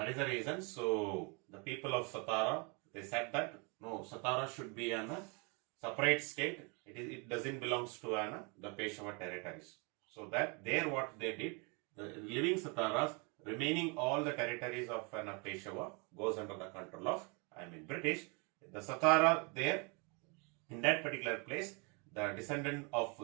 is the reason. So the people of Satara, they said that no, Satara should be a separate state. It doesn't belongs to the Peshwa territories. So that there what they did, the living Sataras, remaining all the territories of Peshwa goes under the control of British. The Satara there, in that particular place, the descendant of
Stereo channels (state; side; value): quieter; left; 32.2 dB